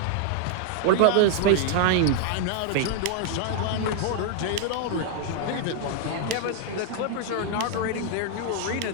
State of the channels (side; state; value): both; different; correlation 0.00